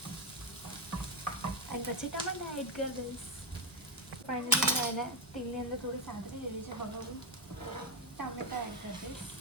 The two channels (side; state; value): both; normal; correlation 0.09